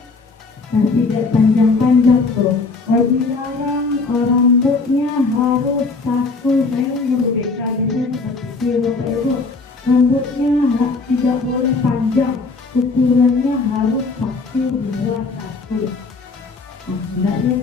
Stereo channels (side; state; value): right; quieter; 4.0 dB